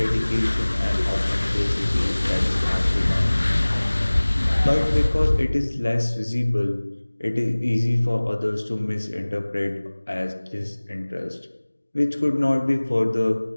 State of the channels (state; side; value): inverted; both; correlation -1.00